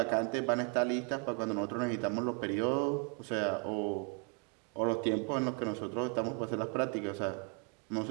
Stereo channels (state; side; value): quieter; left; 33.6 dB